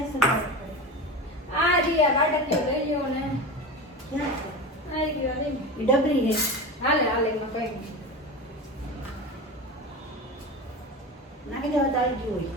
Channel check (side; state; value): both; normal; correlation 0.27